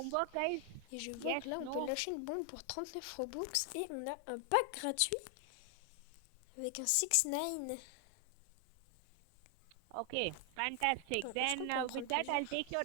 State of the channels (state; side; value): different; both; correlation 0.00